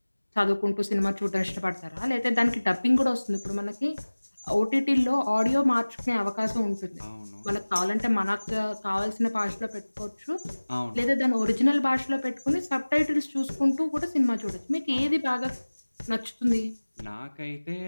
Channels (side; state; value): both; inverted; correlation -1.00